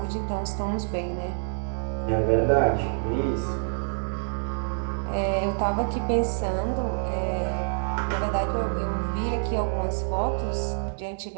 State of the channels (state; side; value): silent; left; 60 dB below the other